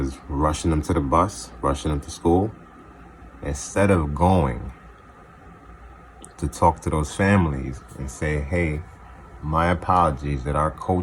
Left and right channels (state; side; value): identical; both; correlation 1.00